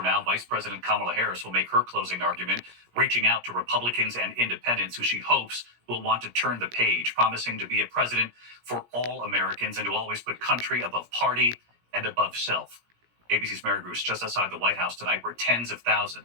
now, Vice President Kamala Harris will make her closing argument, reaching out to Republicans and independents who she hopes will want to turn the page, promising to be a president for all Americans and to always put country above party and above self. ABC's Mary Bruce just outside the White House tonight, where tens of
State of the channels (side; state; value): left; late; 17 ms